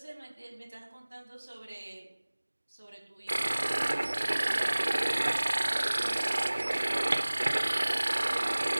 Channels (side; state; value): both; inverted; correlation -1.00